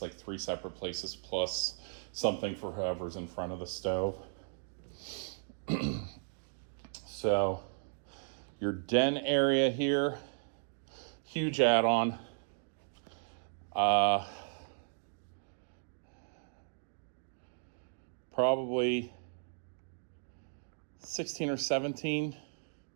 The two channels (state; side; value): silent; left; digital silence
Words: 3 separate places plus something for whoever's in front of the stove. So your den area here, huge add-on. Probably 16 or 17